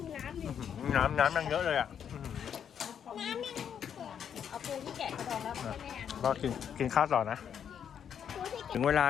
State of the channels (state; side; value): quieter; right; 8.3 dB